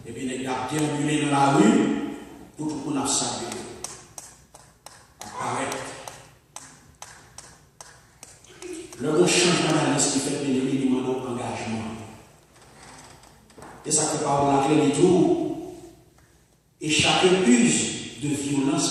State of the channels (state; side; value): identical; both; correlation 1.00